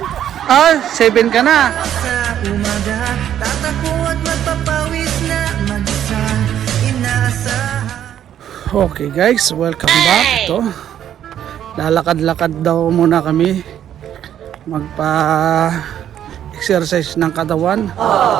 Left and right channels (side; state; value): left; quieter; 10.4 dB